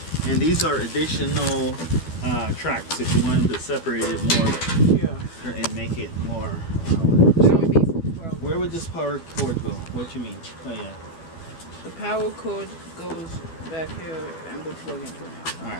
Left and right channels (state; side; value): late; right; 12 ms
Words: And these are additional tracks if you wanted to separate it more Yeah. and make it more. That would be for 12. Where would this power cord go? What you mean? Oh yeah. The power cord goes back here and we'll plug into it.